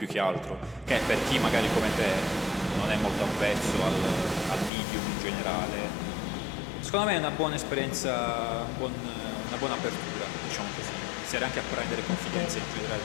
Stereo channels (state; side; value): drops out; right; at 4.7 s